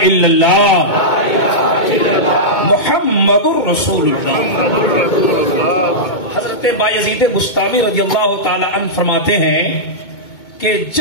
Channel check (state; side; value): late; right; 2.2 ms